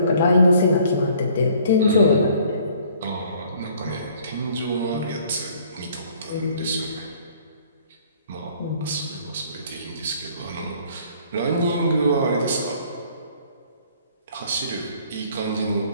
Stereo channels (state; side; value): inverted; both; correlation -0.57